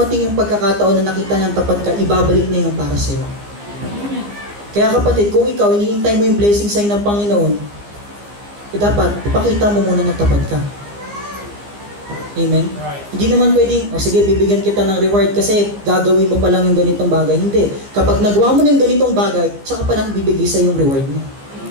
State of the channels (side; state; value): left; late; 15 ms